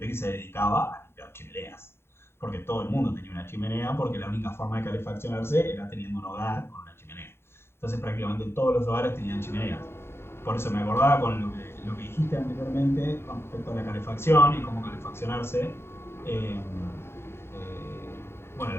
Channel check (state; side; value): late; right; 0.12 ms